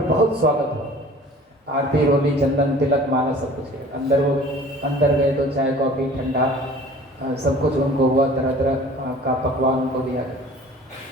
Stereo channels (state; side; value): normal; both; correlation 0.46